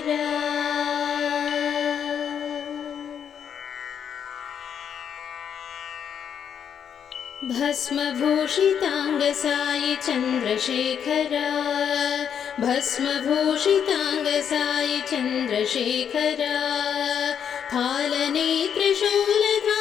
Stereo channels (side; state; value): right; quieter; 8.2 dB